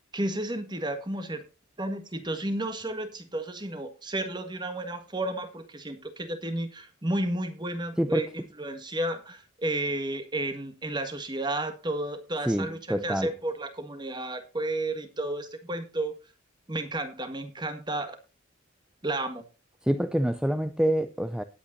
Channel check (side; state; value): both; normal; correlation 0.66